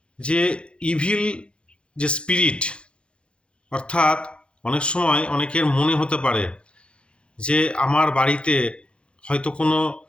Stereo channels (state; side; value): late; right; 0.057 ms